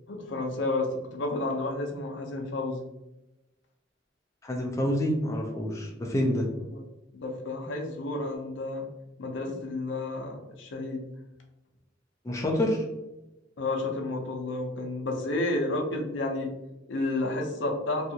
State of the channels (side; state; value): both; normal; correlation 0.44